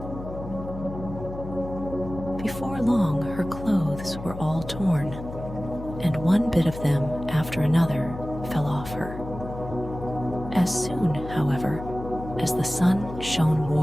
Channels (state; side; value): noise; left; hum, 10 dB below the sound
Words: Before long, her clothes were all torn, and one bit of them after another fell off her. As soon, however, as the sun shone